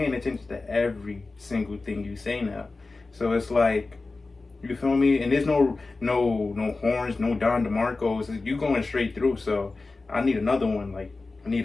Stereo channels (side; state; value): right; quieter; 3.6 dB